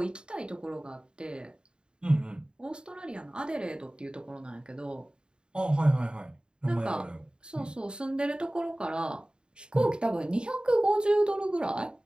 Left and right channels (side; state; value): left; late; 0.050 ms